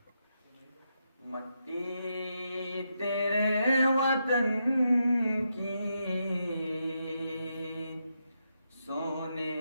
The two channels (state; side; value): inverted; both; correlation -0.83